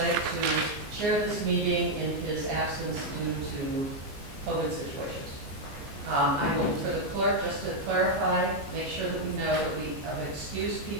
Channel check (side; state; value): left; late; 14 ms